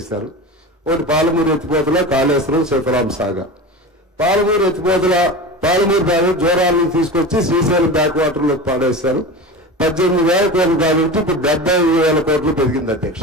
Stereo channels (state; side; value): normal; both; correlation 0.29